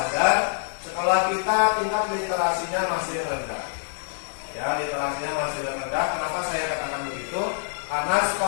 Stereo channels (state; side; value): silent; right; digital silence